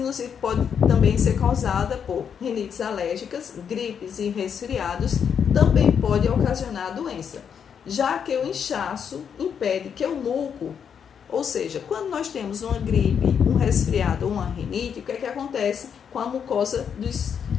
pode também ser causada por rinites alérgicas, gripes e resfriados, também pode ocasionar a doença, já que o inchaço impede que o muco, ou seja, quando nós temos uma gripe, um resfriado ou uma rinite, o que é que acontece com a mucosa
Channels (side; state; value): right; quieter; 7.5 dB